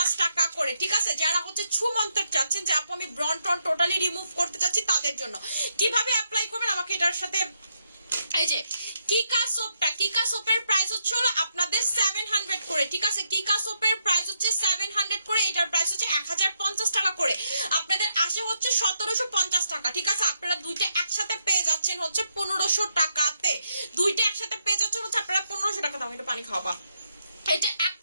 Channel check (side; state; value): both; inverted; correlation -0.79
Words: টাকা করে, ঠিক আছে। যারা হচ্ছে ছুমন্তর চাচ্ছেন যে আপু আমি ব্রন ট্রন টোটালি রিমুভ করতে চাচ্ছি, তাদের জন্য কিভাবে অ্যাপ্লাই করবেন আমাকে এটার সাথে, এই যে কিকা সোপের প্রাইস হচ্ছে হলো আপনাদের 700 করে, ঠিক আছে, কিকা সোপের প্রাইস হচ্ছে 700 করে, এটার প্রাইস হচ্ছে 1050 টাকা করে, আপনাদের আসে হচ্ছে 1750 টাকা, ঠিক আছে। আপনারা দুইটা একসাথে পেয়ে যাচ্ছেন হচ্ছে 1500 টাকাতে, দুইটা একসাথে পেয়ে যাচ্ছেন হচ্ছে আপনারা 1500 টাকা। দাম এটা পানি খাওয়াবা, এটা